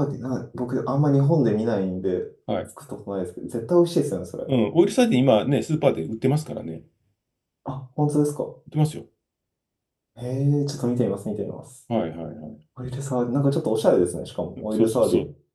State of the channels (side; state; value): both; identical; correlation 1.00